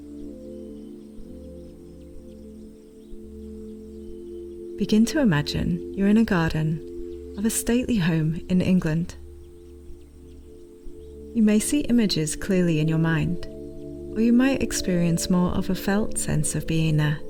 Begin to imagine you're in a garden of a stately home in England. You may see images clearly in your mind, or you might experience more of a felt sense of being there.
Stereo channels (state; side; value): identical; both; correlation 1.00